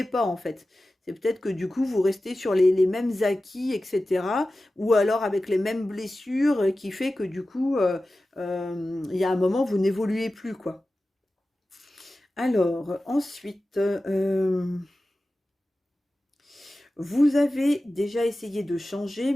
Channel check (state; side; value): normal; both; correlation 0.95